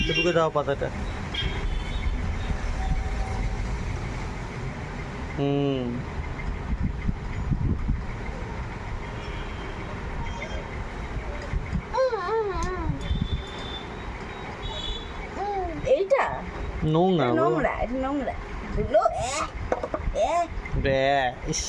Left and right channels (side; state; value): both; identical; correlation 1.00